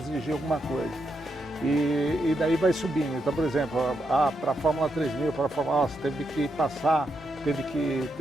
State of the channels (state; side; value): normal; both; correlation 0.82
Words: alguma coisa. E daí vai subindo. Então, por exemplo, para a Fórmula 3000, para a Fórmula, você teve que teve que